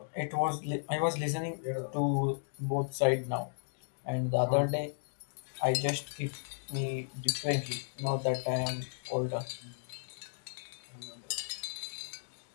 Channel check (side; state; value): right; silent; digital silence